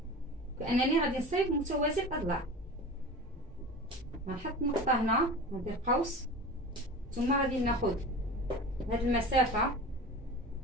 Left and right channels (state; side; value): normal; both; correlation 0.34